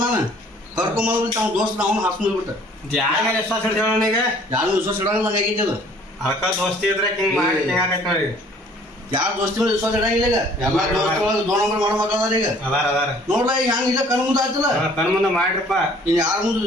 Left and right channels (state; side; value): normal; both; correlation 0.55